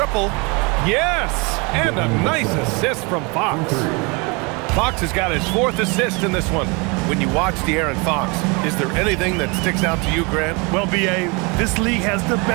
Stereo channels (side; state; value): left; quieter; 29.4 dB